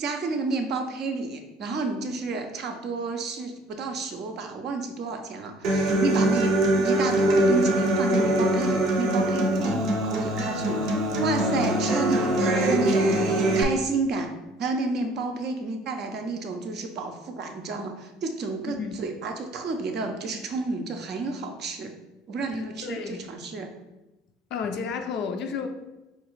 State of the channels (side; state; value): both; normal; correlation 0.56